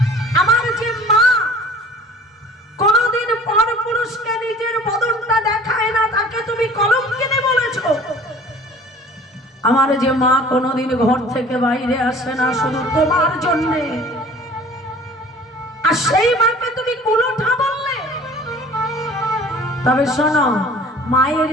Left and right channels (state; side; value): normal; both; correlation 0.47